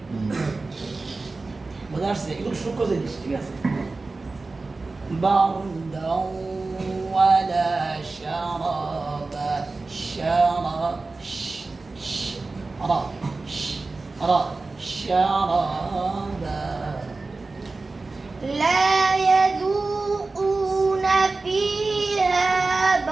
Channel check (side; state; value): left; quieter; 3.6 dB